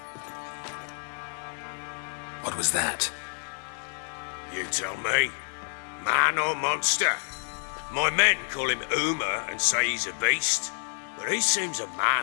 What was that? You tell me. Man or monster? My men call him Uma and say he's a beast, but he seems a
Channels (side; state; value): right; silent; 59 dB below the other